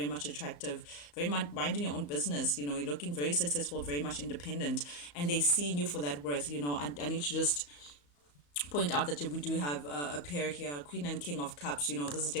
much attractive, very much minding your own business. You're looking very successful, very much independent, and they seeing you for that worth. I need to just point out that we do have a pair here, Queen and King of Cups. This is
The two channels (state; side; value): late; right; 34 ms